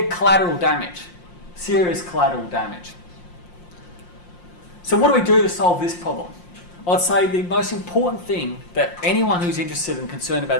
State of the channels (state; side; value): late; right; 5.7 ms